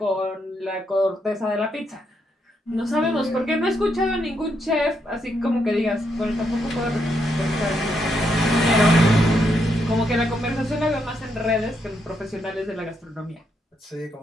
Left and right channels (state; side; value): normal; both; correlation 0.78